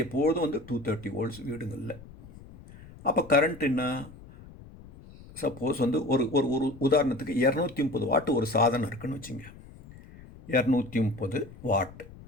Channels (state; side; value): noise; left; rumble, 19 dB below the sound